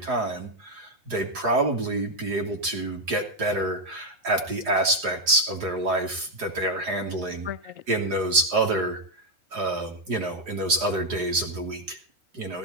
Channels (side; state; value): left; late; 4.8 ms